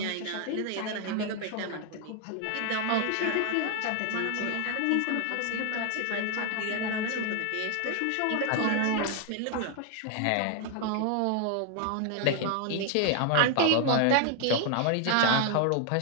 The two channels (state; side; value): different; both; correlation 0.00